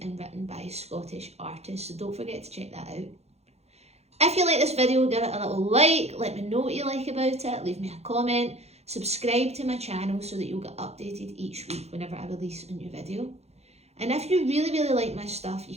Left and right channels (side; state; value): left; late; 0.31 ms